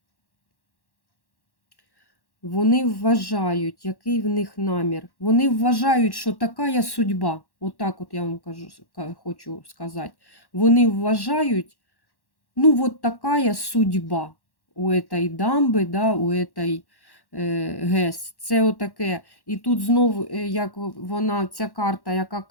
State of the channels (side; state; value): right; late; 1.1 ms